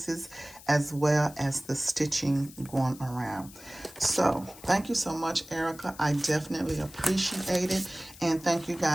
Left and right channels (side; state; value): left; noise; hiss, 19 dB below the sound